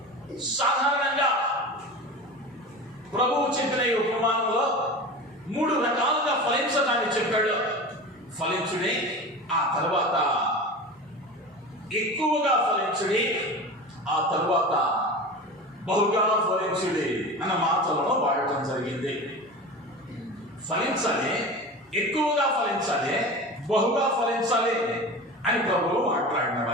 సాధారణంగా ప్రభువు చెప్పిన ఈ ఉపమానంలో 3 రకాలుగా ఫలించటాన్ని చెప్పాడు. ఫలించుడి, ఆ తర్వాత ఎక్కువగా ఫలించుడి, ఆ తర్వాత బహుగా ఫలించుడి అన్న మాటలను వాడటం జరిగింది. ఫలించాలి, ఎక్కువగా ఫలించాలి, బహుగా ఫలించాలి అని ప్రభువు మాట్లాడిన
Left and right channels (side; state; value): both; normal; correlation 0.31